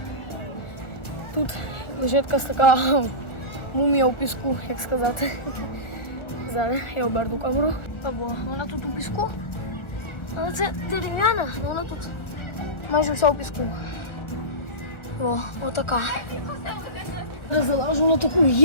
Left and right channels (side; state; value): right; late; 1.4 ms